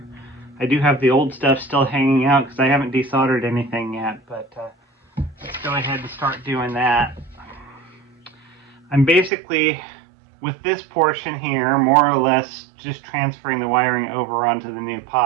I do have the old stuff still hanging out because I haven't desoldered anything yet, but let's go ahead and start doing that. I'm basically, with this portion here, more or less just transferring the wiring over onto the new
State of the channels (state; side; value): drops out; left; at 9.3 s